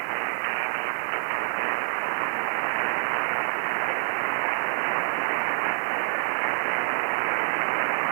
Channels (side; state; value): left; silent; digital silence